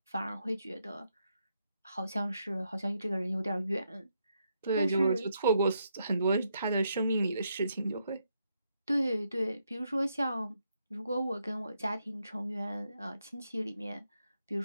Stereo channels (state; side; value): inverted; both; correlation -0.78